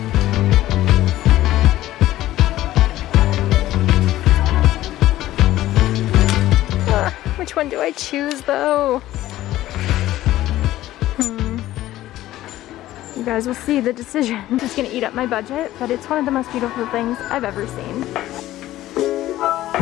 Which one do I choose though? You guys will see the decision. It's gonna eat up my budget, but it's one of the most beautiful things I've ever seen.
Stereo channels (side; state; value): right; quieter; 14.8 dB